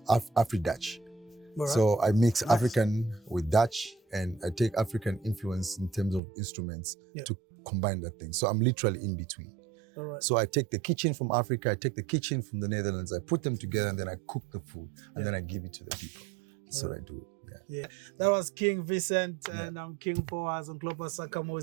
Right. So I mix African with Dutch, and I take African influence in terms of instruments to combine that thing. So I'm literally in between. All right. So I take the kitchen from Africa, I take the kitchen from the Netherlands, I put them together, and then I cook the food, and then I give it to the people. That's what I do. Yeah. That was King Vincent, and I'm King Boaz on Global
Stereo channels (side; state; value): left; drops out; at 6.2 s